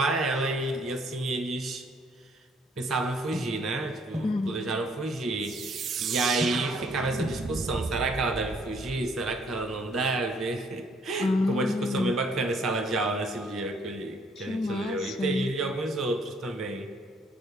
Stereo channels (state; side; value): normal; both; correlation 0.64